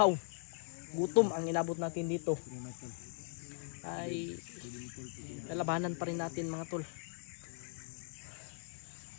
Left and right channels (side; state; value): right; silent; digital silence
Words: gutom ang inabot natin dito, ay lalabanan pa rin natin mga tol.